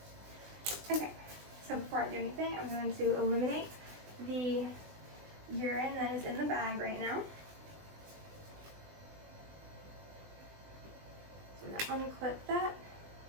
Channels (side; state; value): left; late; 20 ms